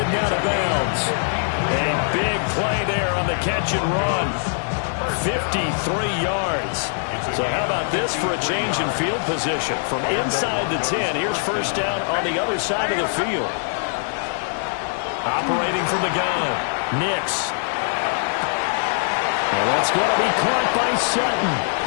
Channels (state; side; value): silent; right; digital silence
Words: out of bounds. A big play there on the catch and run. 53 yards. So how about this for a change in field position? From inside the 10, here's first down on the other side of the field. Operating from the gun. Nix. And that's going to be caught by Sutton.